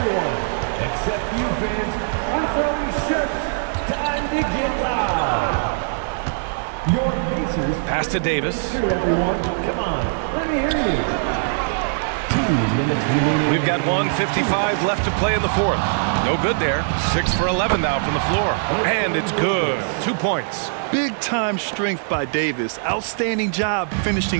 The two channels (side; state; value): left; silent; digital silence